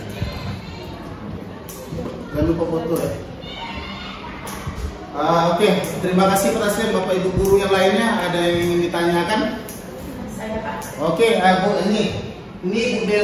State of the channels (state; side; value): identical; both; correlation 1.00